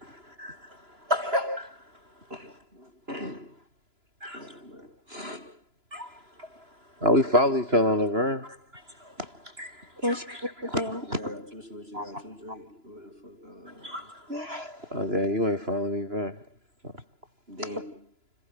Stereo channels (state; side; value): late; left; 2.9 ms